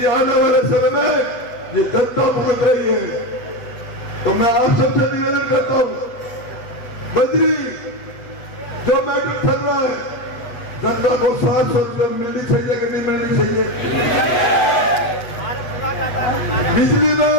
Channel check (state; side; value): late; right; 8.0 ms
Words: आने वाले समय में ये जनता भुगत रही है। तो मैं आप सबसे निवेदन करता हूं, बजरी जो मैटर चल रहा है, जनता को 700 रुपये मिलनी चाहिए कि नहीं मिलनी चाहिए? बिजली में